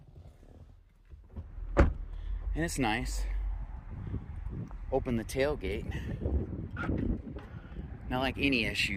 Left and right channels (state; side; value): identical; both; correlation 1.00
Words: And it's nice. Open the tailgate. Now, like any